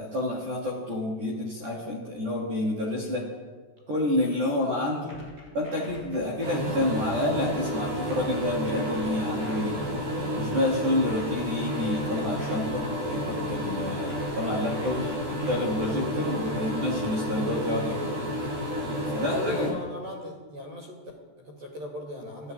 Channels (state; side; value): late; left; 14 ms